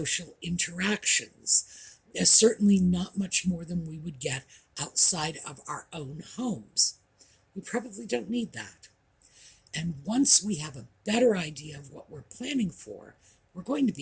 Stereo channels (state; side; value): identical; both; correlation 1.00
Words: interactions. There's certainly not much more than we would get outside of our own homes. We probably don't need that. And once we have a better idea of what we're planning for, we're going to